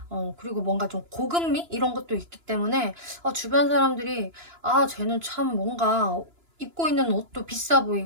그리고 뭔가 좀 고급미 이런 것도 있기 때문에 주변 사람들이 쟤는 참 뭔가 입고 있는 옷도 비싸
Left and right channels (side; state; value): left; late; 2.9 ms